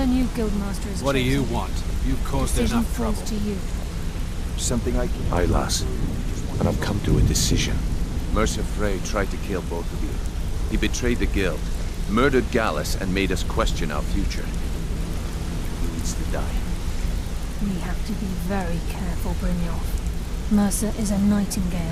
new guildmaster is What do you chosen, want? You've caused decision enough falls trouble. to you. Something I can... Aye, lass. And I've come to a decision. Mercer Frey tried to kill both of you. He betrayed the guild, murdered Gallus, and made us question our future. He needs to die. We have to be very careful, Brynjolf. Mercer is a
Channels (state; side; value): identical; both; correlation 1.00